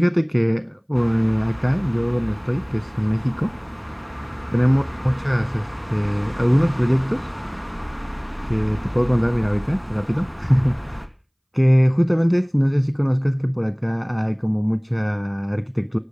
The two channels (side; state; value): both; identical; correlation 1.00